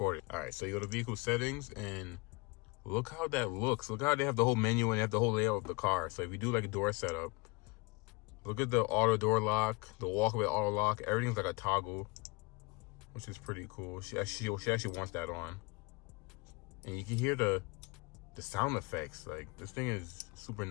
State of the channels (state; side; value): quieter; right; 26.7 dB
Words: it. All right, so you go to vehicle settings and look how that looks. Look how they have the whole menu and they have the whole layout of the car. So if you do like a door setup, look at the auto door lock, the walkaway auto lock, everything's like a toggle, which is pretty cool. She actually wants that on. And you can hear the sound effects. Like this thing is super